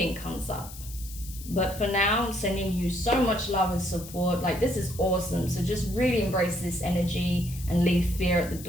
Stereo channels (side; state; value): left; noise; hiss, 15 dB below the sound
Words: comes up. But for now, I'm sending you so much love and support. Like, this is awesome. So just really embrace this energy and leave fear at the